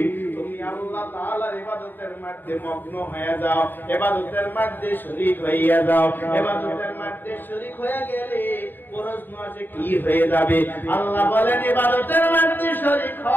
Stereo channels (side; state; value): right; late; 0.092 ms